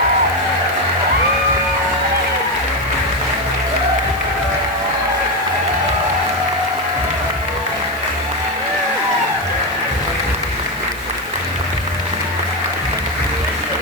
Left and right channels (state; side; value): noise; right; hiss, 18 dB below the sound